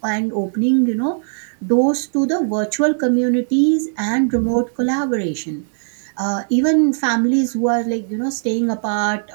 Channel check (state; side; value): silent; left; digital silence